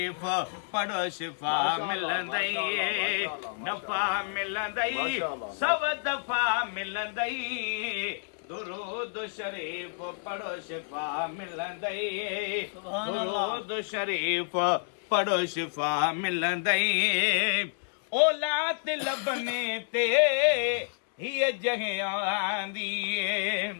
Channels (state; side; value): silent; right; digital silence